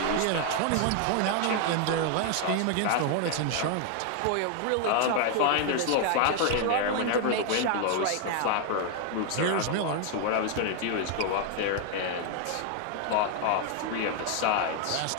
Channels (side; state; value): both; different; correlation 0.00